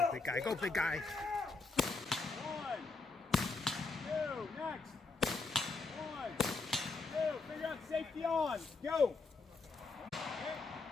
big guy. Go, big guy. 1, 2, next. 1, 2, figure out safety on. Go. Okay.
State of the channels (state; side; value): quieter; right; 3.9 dB